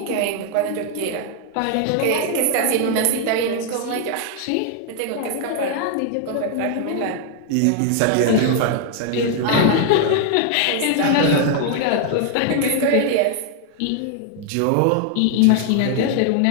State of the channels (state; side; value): different; both; correlation 0.00